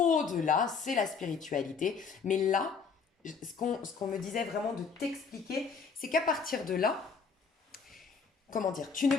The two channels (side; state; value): right; quieter; 5.6 dB